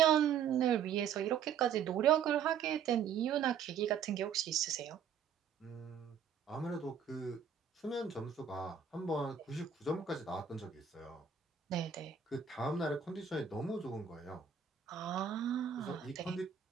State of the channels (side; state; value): left; quieter; 7.6 dB